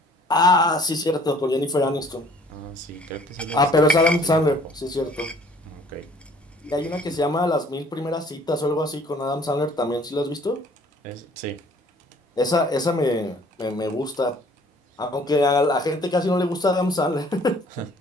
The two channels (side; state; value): both; normal; correlation 0.56